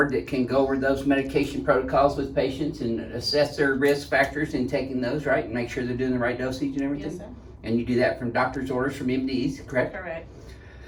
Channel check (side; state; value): both; identical; correlation 1.00